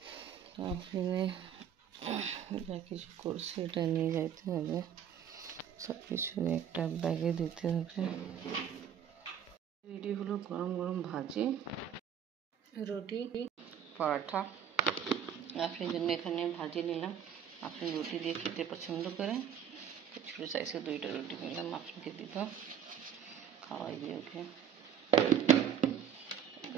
তো আফরিনে যা কিছু করছে এটা নিয়ে যাইতে হবে, সব কিছু একটা ব্যাগে দিতে হবে। এটি হলো গরম গরম ভাজি, রুটি, পরোটা। আপনার জন্য এখানে ভাজি নিলাম। আপনি রুটি দিয়ে খেতে পছন্দ করেন, ছোটো সাইজে 2টা রুটি নিলাম, আপনাকে দিলাম, খাওয়াই দিয়ে ওকে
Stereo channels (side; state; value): left; quieter; 8.9 dB